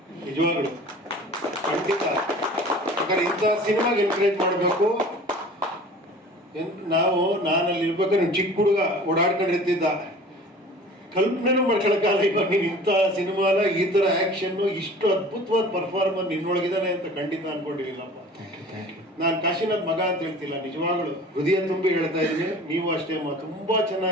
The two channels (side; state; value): both; normal; correlation 0.43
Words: ನಿಜವಾಗ್ಲು ಖಂಡಿತ. ಯಾಕಂದ್ರೆ ಇಂಥ ಸಿನಿಮಾಗೆ ಎನ್ಕರೇಜ್ ಮಾಡಬೇಕು. ನಾನಲ್ಲಿ ಇರ್ಬೇಕಾದ್ರೆ ಚಿಕ್ಕ ಹುಡುಗ ಓಡಾಡ್ಕೊಂಡಿರ್ತಿದ್ದ, ಕಲ್ಪನೆನೂ ಮಾಡ್ಕೊಳಕ್ಕಾಗಲ್ಲ. ಇವಾಗ ನೀನು ಇಂಥ ಸಿನಿಮಾಲ ಈ ತರ ಆಕ್ಷನ್, ಇಷ್ಟು ಅದ್ಭುತವಾದ ಪರ್ಫಾರ್ಮರ್ ನಿನ್ನೊಳಗಿದಾನೆ ಅಂತ ಖಂಡಿತ ಅನ್ಕೊಂಡಿರ್ಲಿಲ್ಲಪ್ಪ. ನಾನು ಕಾಶಿನಾಥ್ ಮಗ ಅಂತ ಹೇಳ್ತಿಲ್ಲ, ನಿಜವಾಗ್ಲು ಹೃದಯ ತುಂಬಿ ಹೇಳ್ತಾ ಇದ್ದೀನಿ. ನೀವು ಅಷ್ಟೇ ತುಂಬಾ